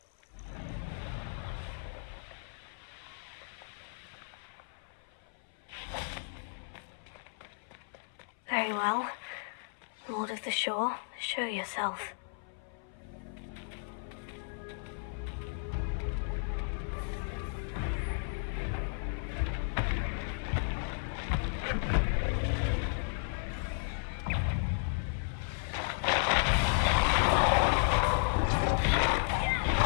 Very well. Lord of the Shore, show yourself.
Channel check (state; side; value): silent; right; 55 dB below the other